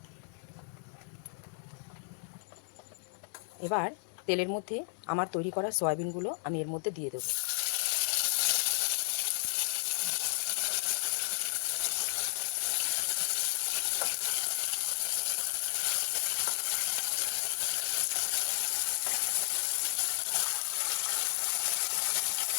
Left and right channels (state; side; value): silent; right; 56 dB below the other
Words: এবার তেলের মধ্যে আমার তৈরি করা সয়াবিনগুলো আমি এর মধ্যে দিয়ে দেবো।